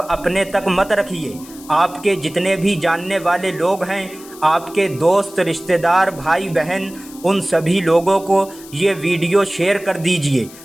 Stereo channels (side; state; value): left; noise; hiss, 19 dB below the sound